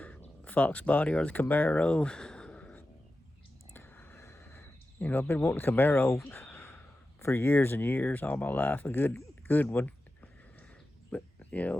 Fox body or the Camaro. I've been wanting a Camaro for years and years, all my life, a good one. But,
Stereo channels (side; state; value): both; normal; correlation 0.92